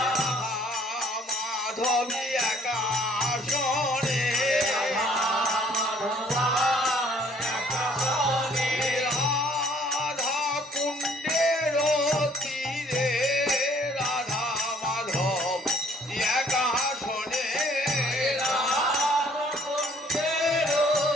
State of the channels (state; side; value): normal; both; correlation 0.60